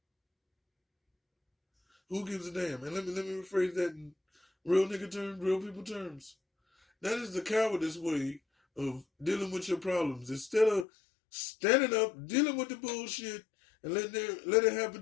Who gives a damn? And let me rephrase that in real nigga terms, real people terms. That is the cowardice way of dealing with your problems. Instead of standing up, dealing with the bullshit, and let it happen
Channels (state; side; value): drops out; right; at 10.9 s